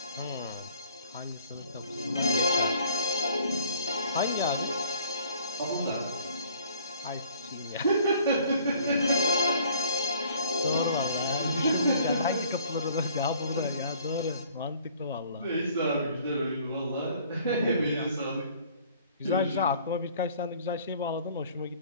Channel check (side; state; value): both; inverted; correlation -0.56